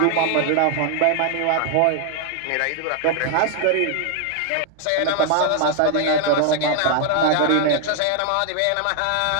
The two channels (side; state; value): both; different; correlation 0.00